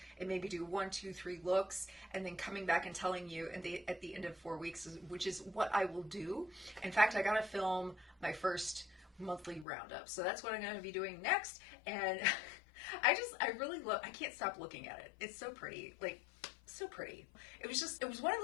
and maybe do 1, 2, 3 looks and then coming back and telling you at the end of 4 weeks, which is what I will do. In fact, I got to film my first monthly roundup. So that's what I'm going to be doing next. And I really love, I can't stop looking at it. It's so pretty, like so pretty. It was one of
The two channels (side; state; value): right; drops out; at 9.7 s